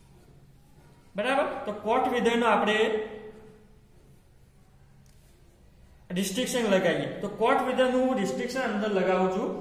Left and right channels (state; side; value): identical; both; correlation 1.00